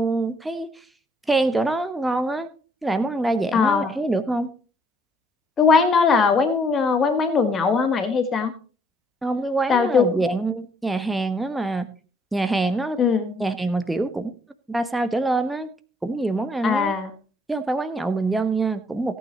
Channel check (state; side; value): normal; both; correlation 0.66